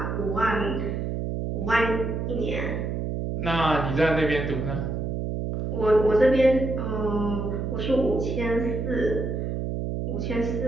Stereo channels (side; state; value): right; noise; hum, 2 dB below the sound